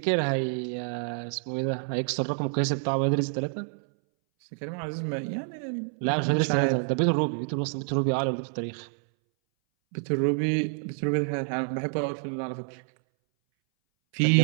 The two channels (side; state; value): left; silent; 60 dB below the other